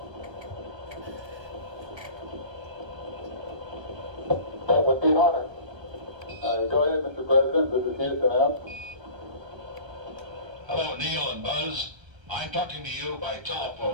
That would be an honor. Go ahead, Mr. President. This is Houston out. Hello, Neil and Buzz. I'm talking to you by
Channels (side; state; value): left; late; 1.3 ms